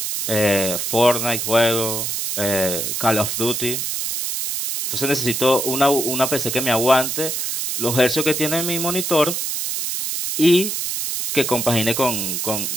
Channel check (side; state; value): right; noise; hiss, 2 dB below the sound